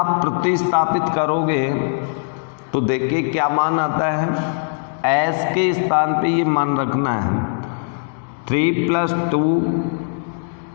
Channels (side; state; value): right; silent; digital silence